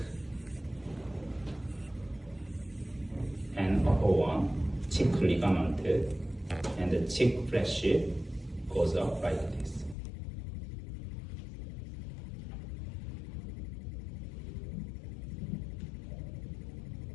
and upper one, cheek ligament, and the cheek flesh goes up like this.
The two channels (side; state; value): right; drops out; at 10.0 s